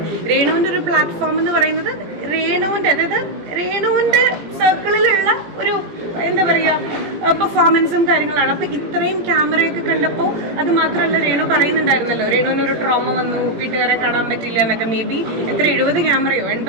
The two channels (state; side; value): late; left; 18 ms